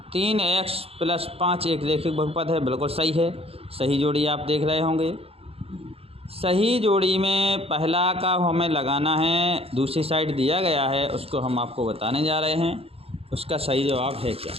3x प्लस 5 एक रैखिक बहुपद है, बिल्कुल सही है। सही जोड़ी आप देख रहे होंगे। सही जोड़ी में पहला का हमें लगाना है, दूसरी साइड दिया गया है उसको हम आपको बताने जा रहे हैं उसका सही जवाब है क्या।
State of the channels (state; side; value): late; left; 0.28 ms